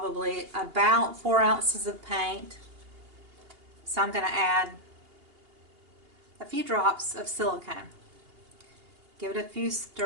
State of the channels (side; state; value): left; late; 2.8 ms